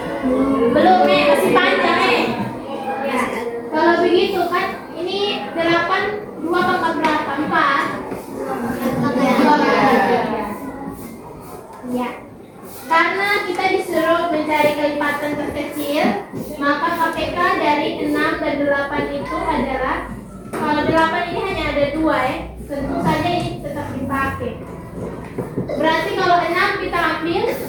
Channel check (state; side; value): identical; both; correlation 1.00